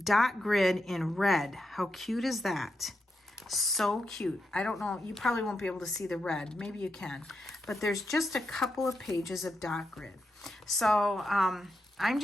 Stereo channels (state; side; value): normal; both; correlation 0.85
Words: grid in red. How cute is that? So cute. I don't know, you probably won't be able to see the red. Maybe you can. But there's just a couple of pages of dot grid. So I'm